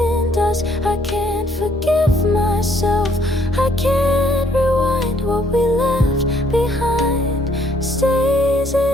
dust. I can't forgive myself, I can't rewind. What we left behind stays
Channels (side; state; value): both; normal; correlation 0.66